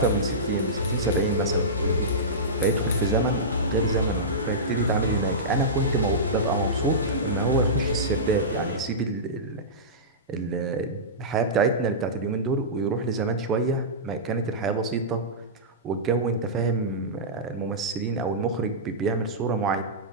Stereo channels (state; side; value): normal; both; correlation -0.17